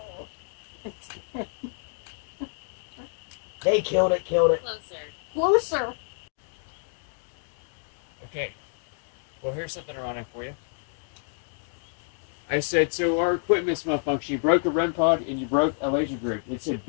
They killed it, killed it. Closer. Okay. Well, here's something ironic for you. I said, so our equipment's malfunctioning. You broke a REM pod and you broke a laser grid. It said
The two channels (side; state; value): right; silent; digital silence